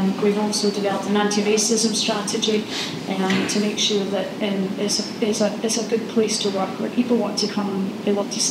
We've also developed an anti-racism strategy to make sure that it's a good place to work where people want to come and they want to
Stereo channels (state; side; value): identical; both; correlation 1.00